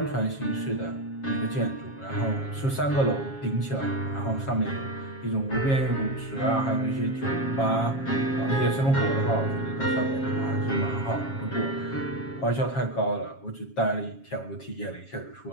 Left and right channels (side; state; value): right; late; 7.4 ms